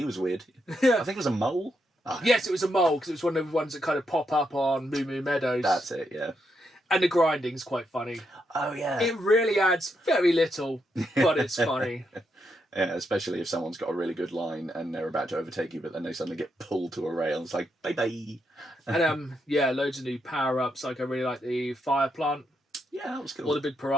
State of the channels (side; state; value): both; normal; correlation 0.80